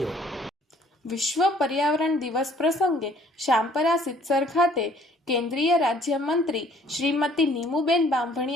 વિશ્વ પર્યાવરણ દિવસ પ્રસંગે શામપરા સિદ્ધસર ખાતે કેન્દ્રીય રાજ્યમંત્રી શ્રીમતી નીમુબેન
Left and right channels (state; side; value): normal; both; correlation 0.59